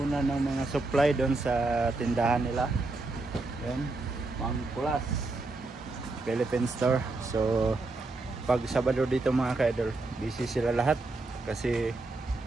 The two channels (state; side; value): quieter; left; 3.2 dB